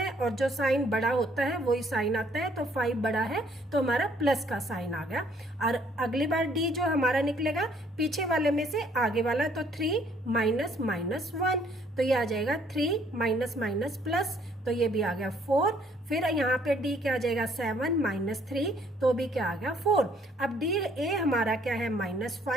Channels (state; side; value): normal; both; correlation 0.63